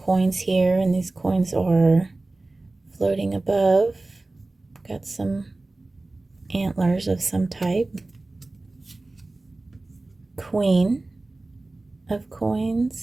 here, and these coins are floating above. Got some antlers of some type. Queen of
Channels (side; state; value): left; quieter; 3.0 dB